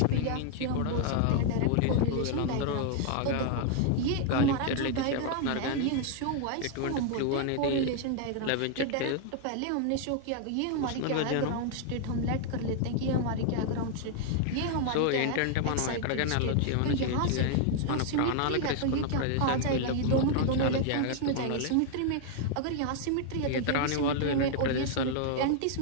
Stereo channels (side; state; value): both; different; correlation 0.00